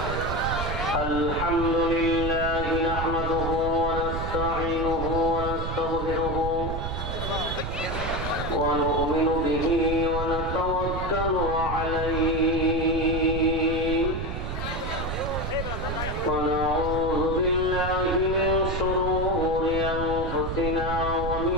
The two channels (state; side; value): noise; right; rumble, 4 dB below the sound